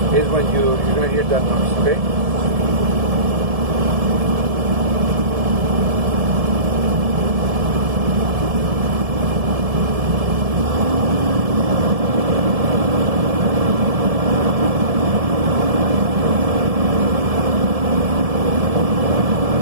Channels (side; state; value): left; late; 1.7 ms